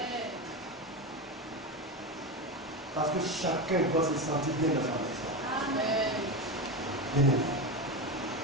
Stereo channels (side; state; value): both; normal; correlation 0.18